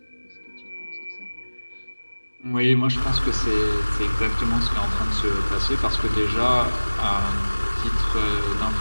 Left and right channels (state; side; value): inverted; both; correlation -1.00